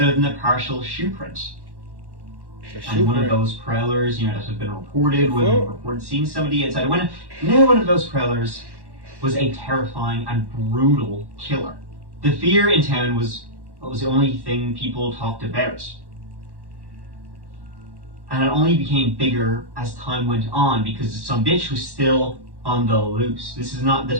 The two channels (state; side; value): late; left; 1.1 ms